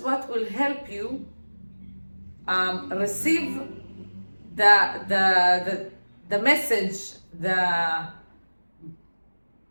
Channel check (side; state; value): both; inverted; correlation -1.00